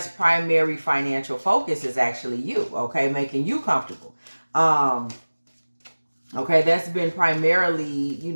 primary financial focus is actually you, okay? Making you comfortable. Okay, that's been primarily, you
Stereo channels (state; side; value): inverted; both; correlation -1.00